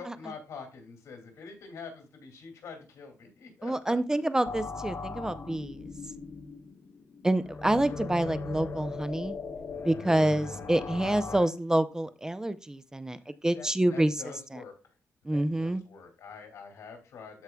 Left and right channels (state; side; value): normal; both; correlation 0.95